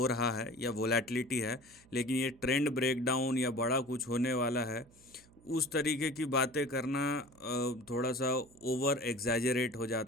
रहा है या वोलेटिलिटी है, लेकिन ये ट्रेंड ब्रेकडाउन या बड़ा कुछ होने वाला है उस तरीके की बातें करना थोड़ा सा ओवर एग्जैजरेट हो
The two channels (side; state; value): right; noise; hum, 27 dB below the sound